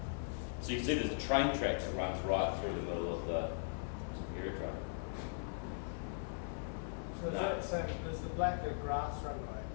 So you can see there's a train track that runs right through the middle of the aerodrome. So is that saying there's the black the grass runway?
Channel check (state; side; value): silent; right; digital silence